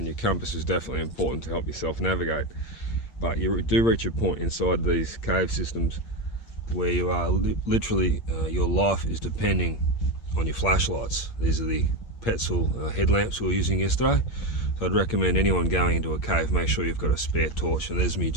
compass is definitely important to help yourself navigate. But you do reach a point inside these cave systems where you are literally, your life is depending on your flashlights. These are the Petzl headlamps we were using yesterday. So I'd recommend anyone going into a cave, make sure you've got a spare torch. And there's me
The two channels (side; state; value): right; late; 8.6 ms